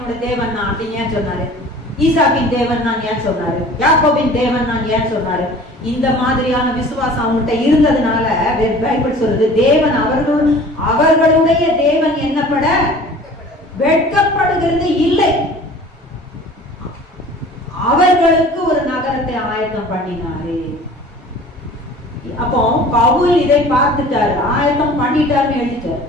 தேவன் நான் அப்படின்னு ஏன் சொன்னாரு? ஈசாக்கின் தேவன் நான் ஏன் சொன்னாரு? யாக்கோபின் தேவன் நான் ஏன் சொன்னாரு? இந்த மாதிரியான விசுவாசம் அவங்கள்ட்ட இருந்ததுனால பைபிள் சொல்லுது, தேவன் அவர்களுடைய தேவன் என்னப்பட வெட்கப்படுகிறது இல்லை. அவர்களுக்கு ஒரு நகரத்தை ஆயத்தம் பண்ணினாரு. அப்போ பவுல் இதை பார்த்துட்டாரு, ஆயத்தம் பண்ணிட்டாருன்னு எழுதிட்டாரு.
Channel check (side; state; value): both; normal; correlation 0.45